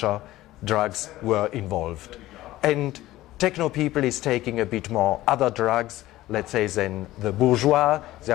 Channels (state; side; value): quieter; right; 16.2 dB